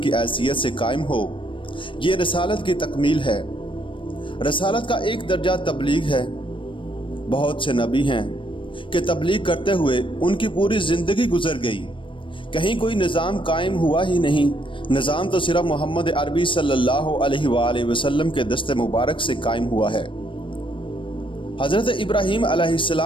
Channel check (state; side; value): late; right; 0.25 ms